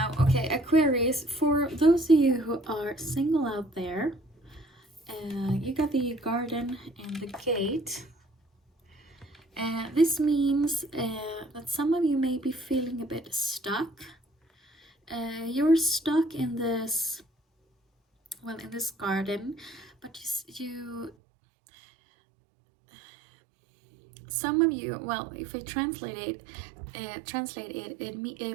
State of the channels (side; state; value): left; drops out; at 21.1 s